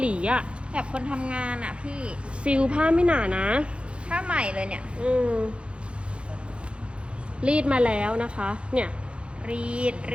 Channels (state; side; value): late; left; 0.058 ms